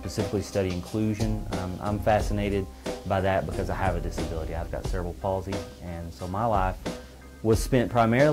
study inclusion. I'm fascinated by that because I have a disability. I've got cerebral palsy, and so my life was spent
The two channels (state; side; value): identical; both; correlation 1.00